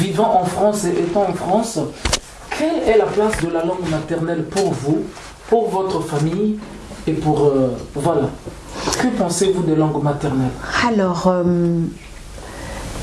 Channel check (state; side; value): identical; both; correlation 1.00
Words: en France et étant en France, quelle est la place de la langue maternelle pour vous, pour votre famille et pour... voilà. Que pensez-vous des langues maternelles? Alors,